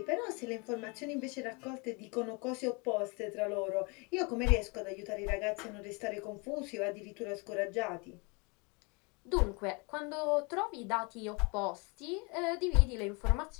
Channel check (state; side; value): quieter; right; 30.6 dB